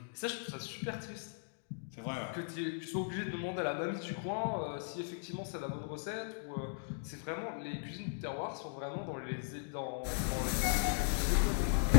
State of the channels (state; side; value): silent; right; digital silence